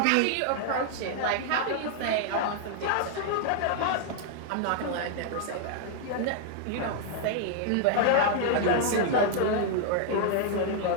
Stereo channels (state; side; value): different; both; correlation 0.00